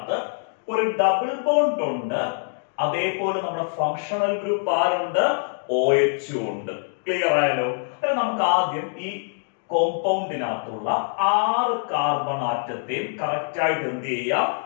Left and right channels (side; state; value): right; silent; 62 dB below the other